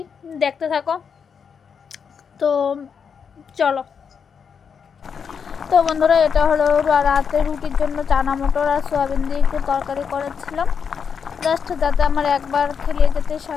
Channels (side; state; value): right; quieter; 6.6 dB